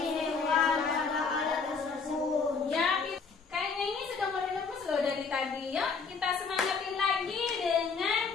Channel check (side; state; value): right; quieter; 5.1 dB